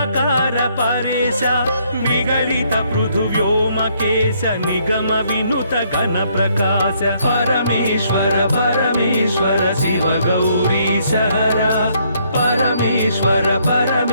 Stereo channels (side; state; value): both; inverted; correlation -0.69